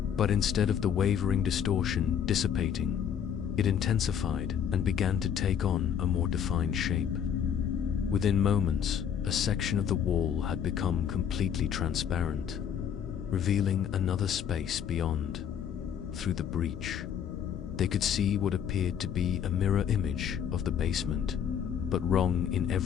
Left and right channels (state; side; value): quieter; right; 8.5 dB